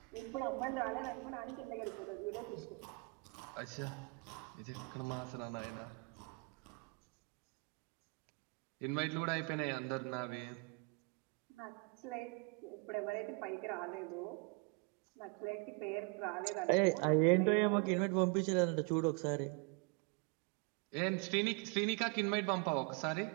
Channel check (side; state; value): left; quieter; 31.4 dB